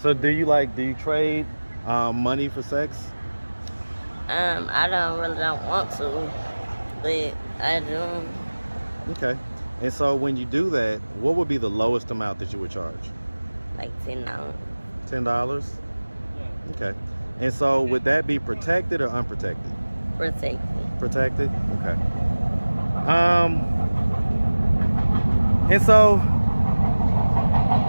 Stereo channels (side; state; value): both; inverted; correlation -1.00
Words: So do you trade money for sex? I don't want to, but I do. Okay. And so when you do that, what would be the lowest amount that you would charge? Like $10. $10? Okay. And so would that be protected or unprotected? Protected. Protected? Okay. And so,